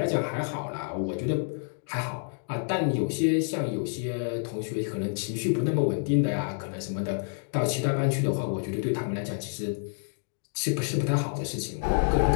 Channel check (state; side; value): silent; right; digital silence